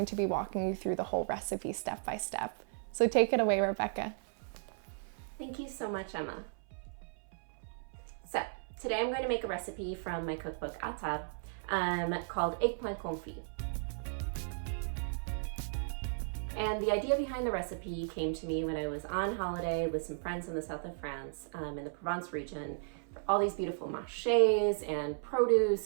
to be walking you through the whole recipe step by step. So take it away, Rebekah. Thank you so much, Emma. So today I'm going to make a recipe from my cookbook À Table called Eggplant Confit. And the idea behind the recipe came to me when I was on holiday with some friends in the south of France, in the Provence region. All these beautiful marchés and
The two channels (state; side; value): silent; left; 54 dB below the other